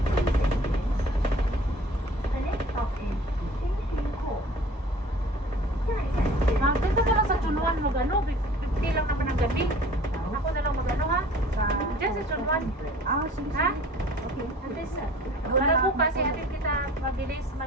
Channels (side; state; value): both; normal; correlation 0.48